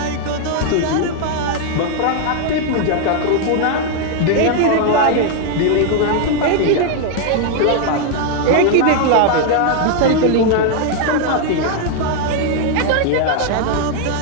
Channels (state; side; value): different; both; correlation 0.00